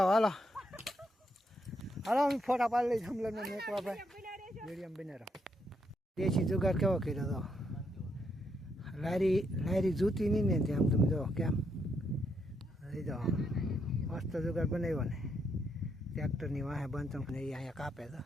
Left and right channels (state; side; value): normal; both; correlation 0.77